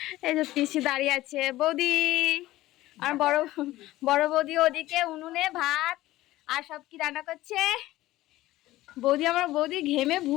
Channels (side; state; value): right; quieter; 16.5 dB